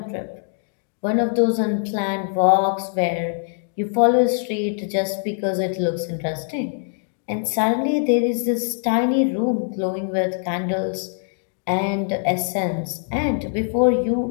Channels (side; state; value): right; silent; digital silence